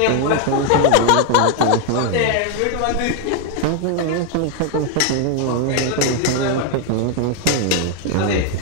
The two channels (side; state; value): both; different; correlation 0.00